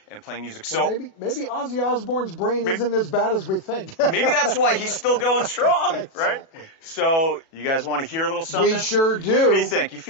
playing music. So maybe Ozzy Osbourne's brain isn't as bad as we think. Maybe that's why he's still going strong, Exactly. right? So you guys want to hear a little something? We sure do. What do you think? You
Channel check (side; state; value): right; late; 37 ms